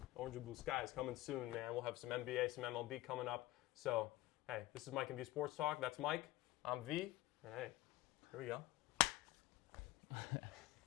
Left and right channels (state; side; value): quieter; right; 17.1 dB